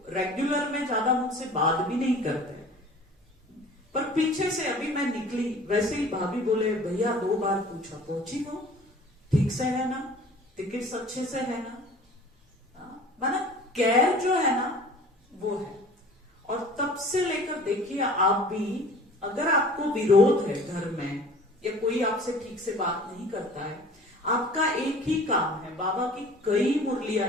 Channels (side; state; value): both; normal; correlation 0.46